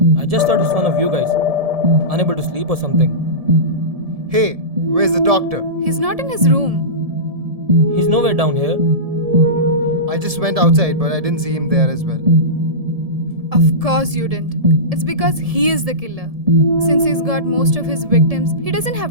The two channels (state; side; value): late; left; 1.7 ms